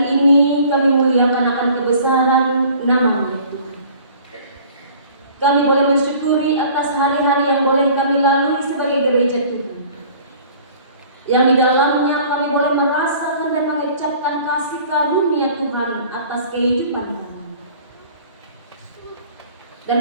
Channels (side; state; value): both; inverted; correlation -0.50